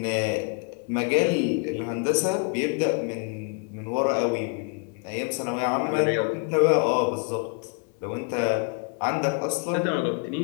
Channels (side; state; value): right; quieter; 38.0 dB